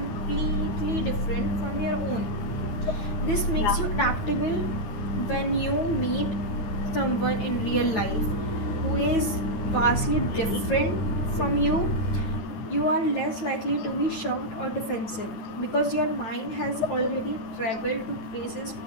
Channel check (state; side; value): late; right; 9.2 ms